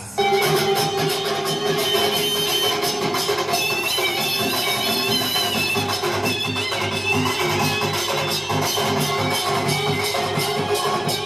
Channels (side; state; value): left; noise; hum, 28 dB below the sound